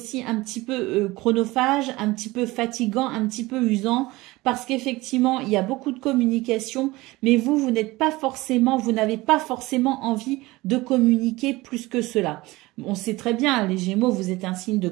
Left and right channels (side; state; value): left; quieter; 20.4 dB